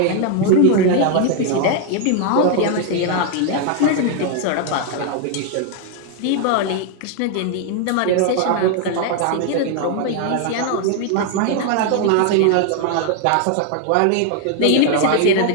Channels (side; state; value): both; different; correlation 0.00